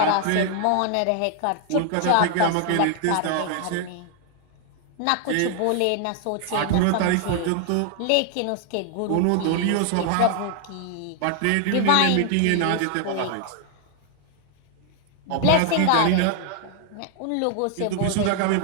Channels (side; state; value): both; different; correlation 0.00